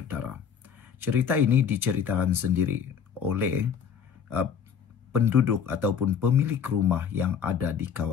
Cerita ini diceritakan sendiri oleh penduduk ataupun pemilik rumah yang ada di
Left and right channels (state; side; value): quieter; right; 7.3 dB